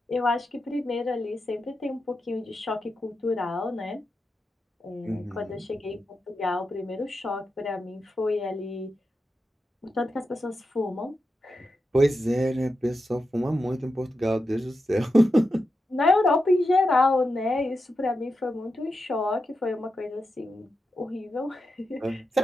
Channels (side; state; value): both; normal; correlation 0.88